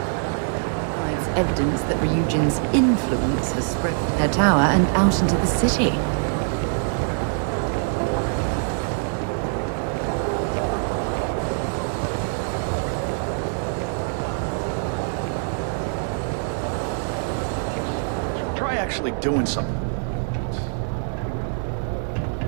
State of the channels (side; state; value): left; silent; 59 dB below the other